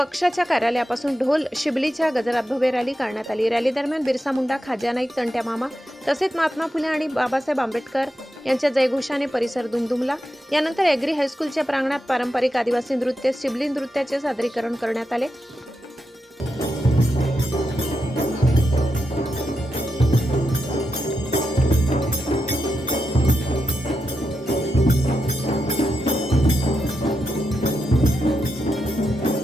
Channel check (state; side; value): normal; both; correlation 0.86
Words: कार्यालयापासून ढोल शिबलीच्या गजरात भव्य रॅली काढण्यात आली. रॅली दरम्यान बिरसा मुंडा, खाज्या नाईक, तंट्या मामा तसेच महात्मा फुले आणि बाबासाहेब आंबेडकर यांच्या जयघोषाने परिसर दुमदुमला. यानंतर एग्री हायस्कूलच्या प्रांगणात पारंपरिक आदिवासी नृत्य शिबली नृत्याचे सादरीकरण करण्यात आले.